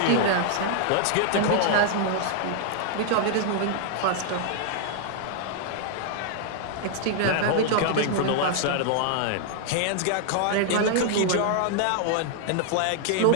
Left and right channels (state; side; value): different; both; correlation 0.00